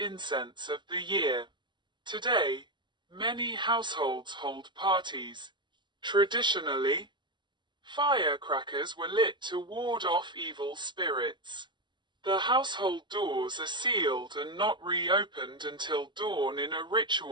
of the year. Today, many households hold parties. Traditionally, firecrackers were lit to ward off evil spirits. The household doors are sealed and not reopened until dawn in a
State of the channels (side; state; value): left; late; 0.22 ms